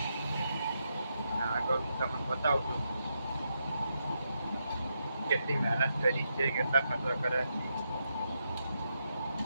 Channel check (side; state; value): both; inverted; correlation -0.83